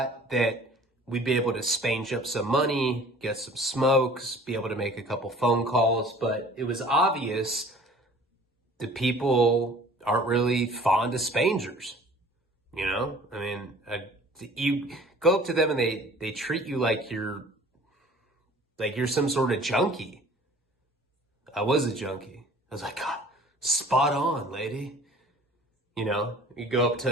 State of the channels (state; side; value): normal; both; correlation 0.49